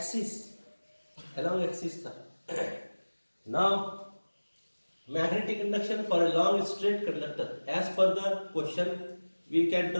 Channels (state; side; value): inverted; both; correlation -1.00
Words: था। Now magnetic induction for a long straight conductor, as per the question we can